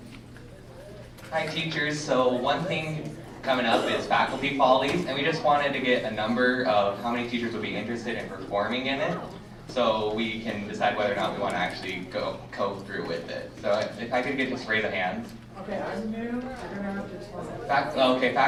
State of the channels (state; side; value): identical; both; correlation 1.00